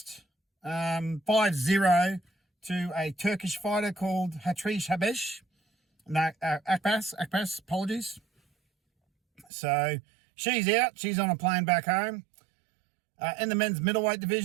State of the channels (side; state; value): left; drops out; at 9.5 s